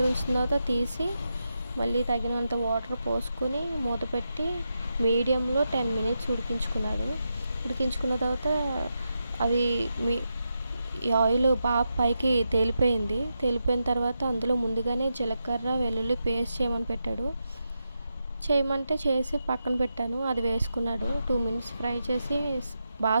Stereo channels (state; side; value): inverted; both; correlation -0.87